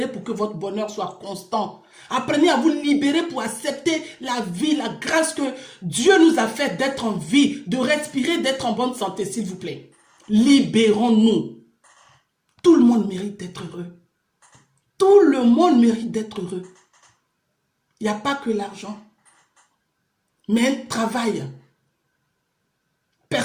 pour que votre bonheur soit constant. Apprenez à vous libérer pour accepter la vie, la grâce que Dieu nous a fait d'être en vie, de respirer, d'être en bonne santé, s'il vous plaît. Libérons-nous. Tout le monde mérite d'être heureux. Tout le monde mérite d'être heureux. Il n'y a pas que l'argent, mais un travail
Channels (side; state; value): both; identical; correlation 1.00